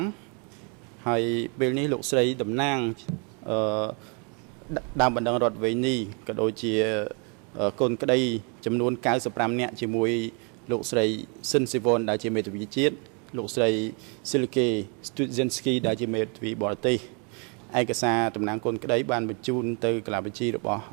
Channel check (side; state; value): left; quieter; 36.1 dB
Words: ហើយពេលនេះលោកស្រីតំណាងដើមបណ្ដឹងរដ្ឋវេនីក៏ដូចជាកូនក្តីចំនួន95នាក់ជាមួយលោកស្រីស៊ិនស៊ីវ៉ុនដែលជាមេធាវីជាតិលោកស្រីស៊ីលកេស្ទូសិនស្គីដែលជាមេធាវីបរទេសឯកសារតំណាងកូនក្តីបានបញ្ជូនទៅកាលាបញ្ជីរបស់